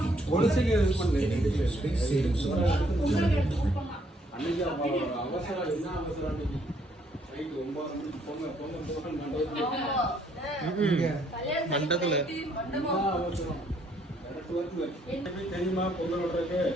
மண்டத்துல தெரியுமா பொங்கல் விடுறதுக்கு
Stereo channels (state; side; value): normal; both; correlation 0.68